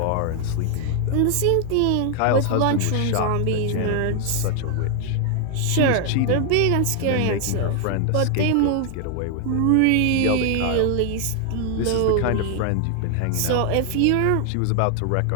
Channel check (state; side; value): different; both; correlation 0.00